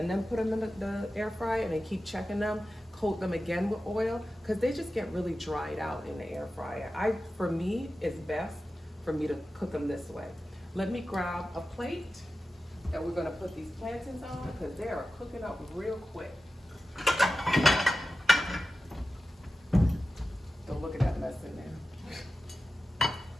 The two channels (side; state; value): both; normal; correlation 0.94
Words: then put them in the air fryer and then keep checking them. Coat them again with oil because they just get really dried out in the air fryer. For me, it's best for me to cook them this way. Let me grab a plate that we're gonna put these plantains on because they are cooking up real quick. Don't look at that mess in there.